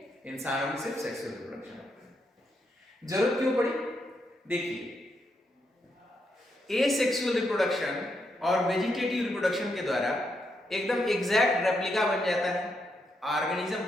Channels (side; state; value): both; normal; correlation 0.80